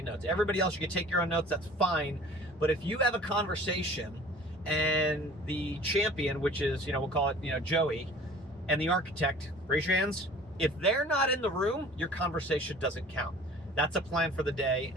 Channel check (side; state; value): both; normal; correlation 0.46